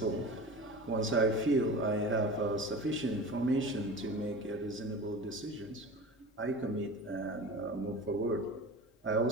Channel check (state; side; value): normal; both; correlation 0.34